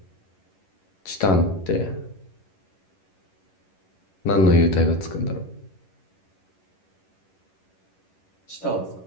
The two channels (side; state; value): right; late; 11 ms